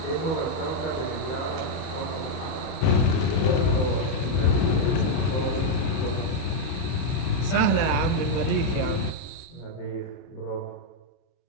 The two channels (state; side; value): late; right; 31 ms